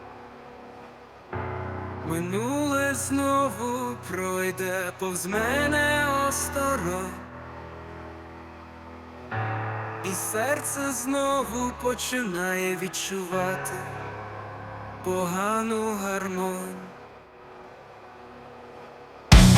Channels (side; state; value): both; identical; correlation 1.00